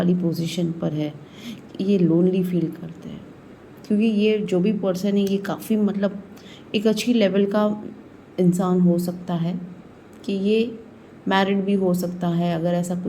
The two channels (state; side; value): identical; both; correlation 1.00